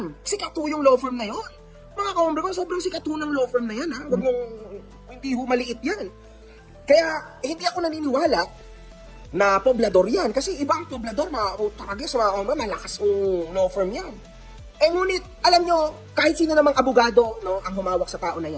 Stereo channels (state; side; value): identical; both; correlation 1.00